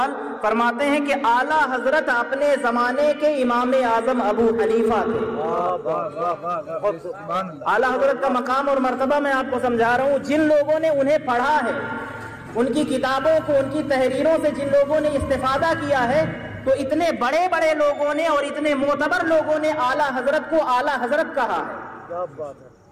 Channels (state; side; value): identical; both; correlation 1.00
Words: فرماتے ہیں کہ اعلیٰ حضرت اپنے زمانے کے امام اعظم ابو حنیفہ تھے. اعلیٰ حضرت کا مقام اور مرتبہ میں آپ کو سمجھا رہا ہوں. جن لوگوں نے انہیں پڑھا ہے، ان کی کتابوں کو، ان کی تحریروں سے جن لوگوں نے استفادہ کیا ہے، تو اتنے بڑے بڑے لوگوں نے اور اتنے معتبر لوگوں نے اعلیٰ حضرت کو اعلیٰ حضرت کہا ہے.